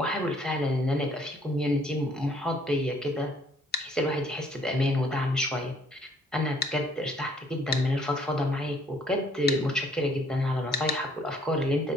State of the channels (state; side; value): normal; both; correlation 0.63